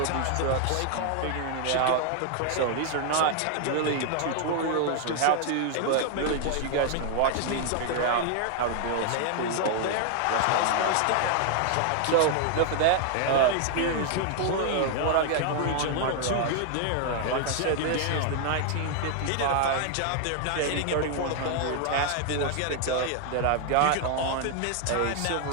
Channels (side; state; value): both; different; correlation 0.00